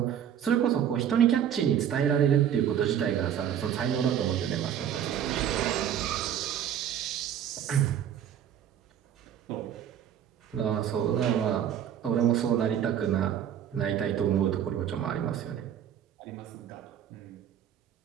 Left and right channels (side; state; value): left; quieter; 9.5 dB